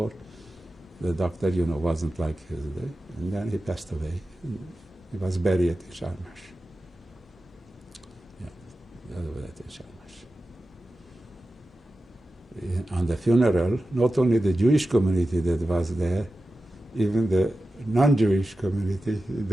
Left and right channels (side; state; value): both; normal; correlation 0.94